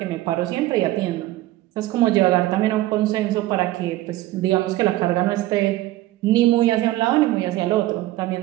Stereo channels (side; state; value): left; quieter; 16.4 dB